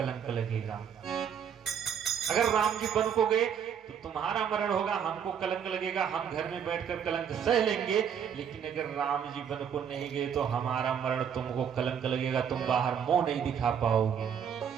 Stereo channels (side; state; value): left; quieter; 8.1 dB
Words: लगेगा। अगर राम जी वन को गए तो तुम्हारा मरण होगा, हमको कलंक लगेगा, हम घर में बैठकर कलंक सह लेंगे। लेकिन अगर राम जी वन को नहीं गए तो हमारा मरण तुमको कलंक लगेगा, तुम बाहर मुंह नहीं दिखा पाओगे।